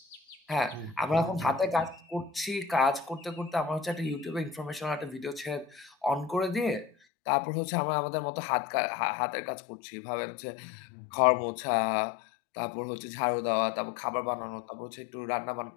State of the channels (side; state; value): right; drops out; at 6.9 s